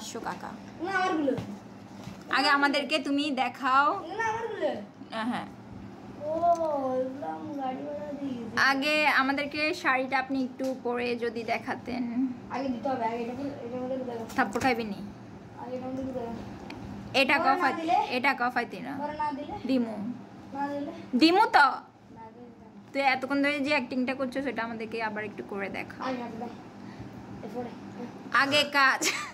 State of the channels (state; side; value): identical; both; correlation 1.00